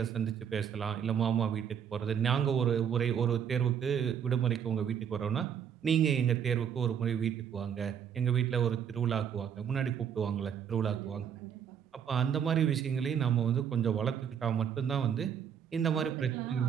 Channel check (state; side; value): quieter; left; 8.2 dB